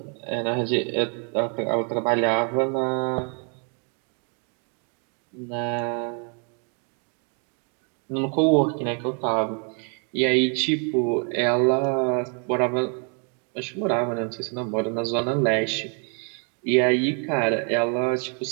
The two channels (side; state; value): left; quieter; 39.5 dB